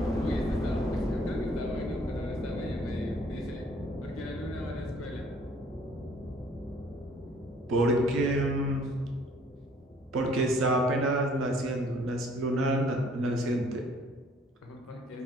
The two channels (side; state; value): both; normal; correlation 0.59